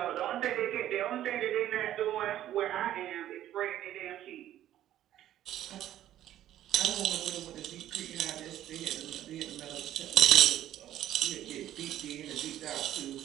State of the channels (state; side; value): quieter; left; 12.5 dB